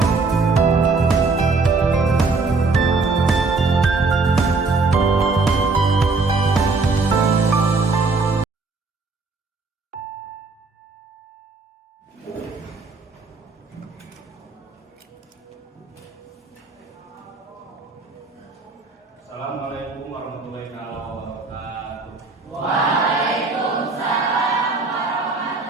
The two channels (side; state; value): left; quieter; 3.9 dB